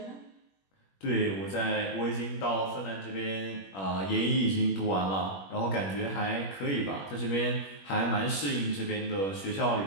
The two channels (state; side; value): late; right; 21 ms